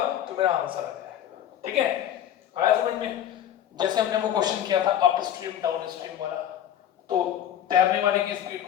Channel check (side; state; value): right; quieter; 10.6 dB